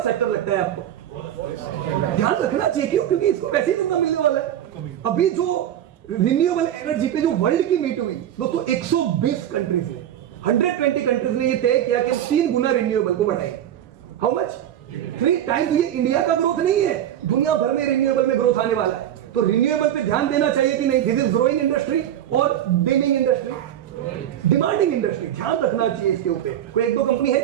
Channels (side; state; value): left; quieter; 11.1 dB